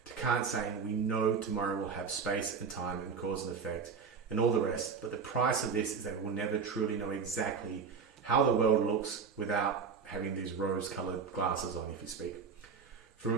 to Kant saying we know tomorrow will have space and time and cause and effect and all the rest, but the price of this is that we will never truly know exactly how the world looks without having these rose-coloured glasses on, if you speak. From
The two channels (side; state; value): left; quieter; 5.7 dB